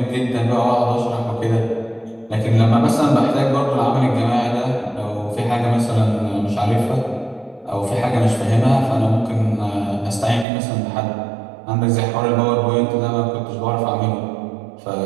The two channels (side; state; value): left; drops out; at 10.5 s